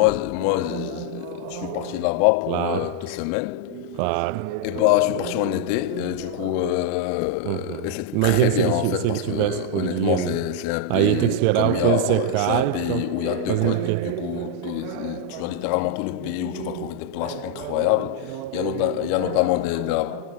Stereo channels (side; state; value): both; different; correlation 0.00